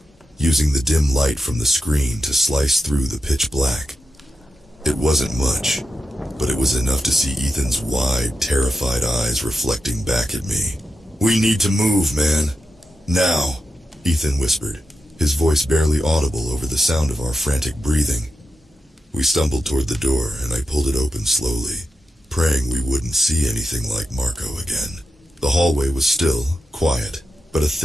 using the dim light from the screen to slice through the pitch black. It wasn't much, but it was enough to see Ethan's wide, terrified eyes reflecting back at me. "We need to move, man. Now," Ethan whispered, his voice barely audible over the sound of our frantic breathing. We stumbled toward the door, and I pulled it open slowly, praying we wouldn't see anything like Marco again. The hallway was still, quiet, but a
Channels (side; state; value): both; normal; correlation 0.89